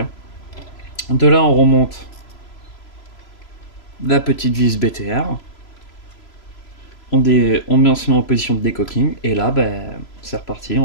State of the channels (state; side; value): late; right; 3.0 ms